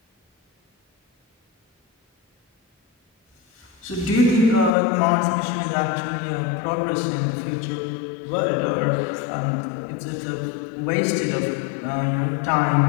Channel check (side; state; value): right; drops out; at 4.7 s